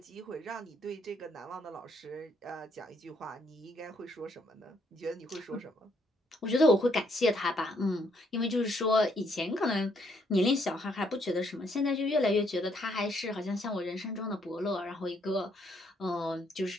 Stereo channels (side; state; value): both; normal; correlation 0.71